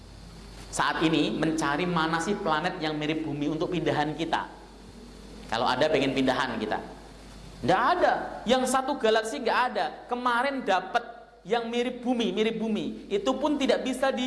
saat ini, mencari mana sih planet yang mirip bumi untuk pindahan kita. Kalau ada pengen pindahan kita, nggak ada. Yang satu galaksi nggak ada. Kemarin dapat yang mirip bumi, itu pun tidak bisa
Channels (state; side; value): identical; both; correlation 1.00